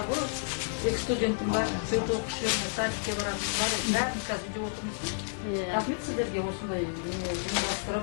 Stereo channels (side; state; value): right; silent; digital silence